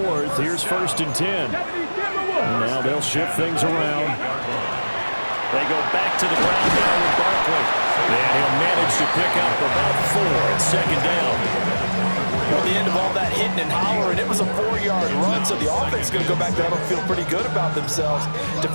here's 1st and 10. And now they'll shift things around. They go back to the ground now with Barkley. And he'll manage to pick up about 4 at 2nd down. At the end of all that hitting and hollering, it was a 4-yard run, so the offense is going to go back there and feel pretty good about themselves.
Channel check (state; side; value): inverted; both; correlation -1.00